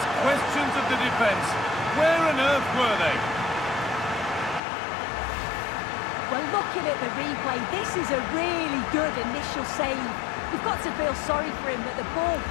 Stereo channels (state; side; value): drops out; right; at 4.6 s